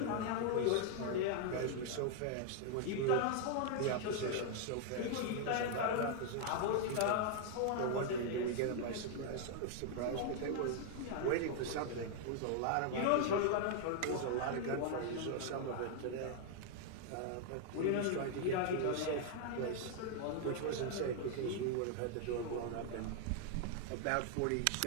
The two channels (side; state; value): both; different; correlation 0.00